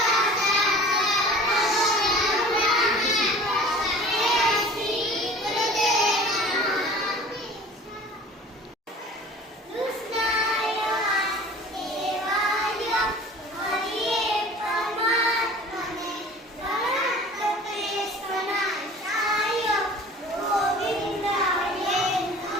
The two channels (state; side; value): normal; both; correlation 0.44